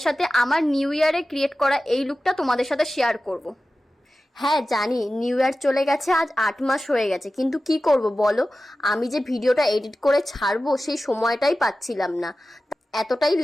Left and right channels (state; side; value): normal; both; correlation 0.95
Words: সাথে আমার নিউ ইয়ারে ক্রিয়েট করা এই লুকটা তোমাদের সাথে শেয়ার করব। হ্যাঁ জানি, নিউ ইয়ার চলে গেছে, আজ 8 মাস হয়ে গেছে, কিন্তু কি করব বলো, আমি যে ভিডিওটা এডিট করে ছাড়বো সেই সময়টাই পাচ্ছিলাম না। এতটাই